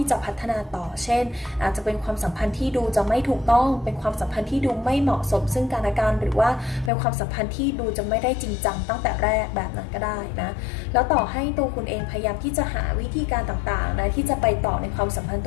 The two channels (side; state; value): right; drops out; at 6.9 s